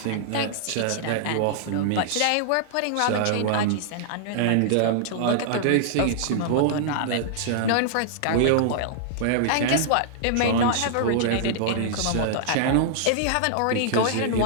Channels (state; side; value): different; both; correlation -0.01